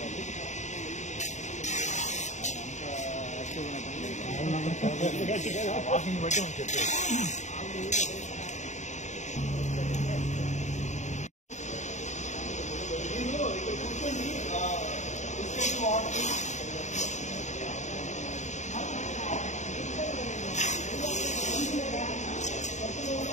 వాకింగ్ బట్టి మనం చెప్పేది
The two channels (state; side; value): late; right; 0.34 ms